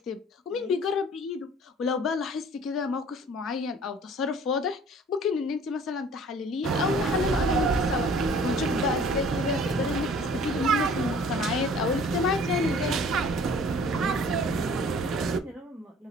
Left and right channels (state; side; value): normal; both; correlation 0.51